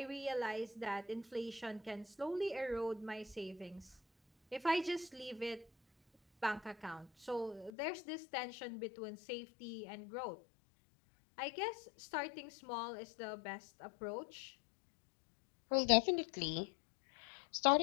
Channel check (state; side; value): drops out; right; at 7.7 s